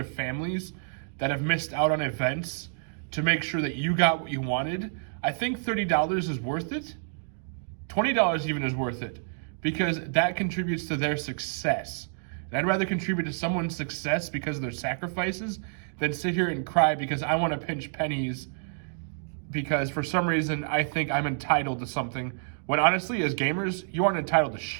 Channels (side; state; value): left; silent; digital silence